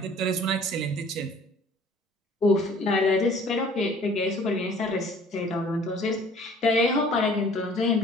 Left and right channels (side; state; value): both; normal; correlation 0.52